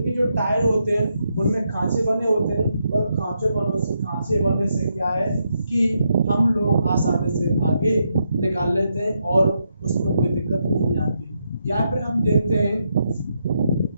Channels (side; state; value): both; inverted; correlation -0.81